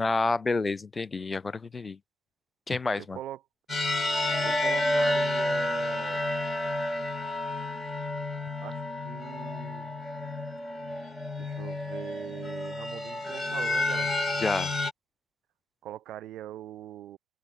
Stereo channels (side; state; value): both; normal; correlation 0.86